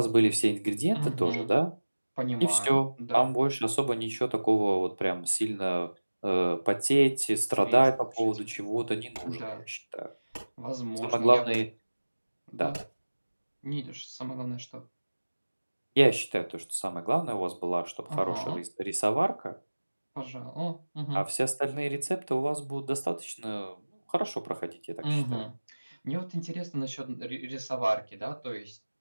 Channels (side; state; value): both; inverted; correlation -1.00